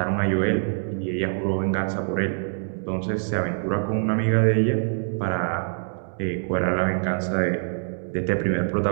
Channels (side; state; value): left; silent; 62 dB below the other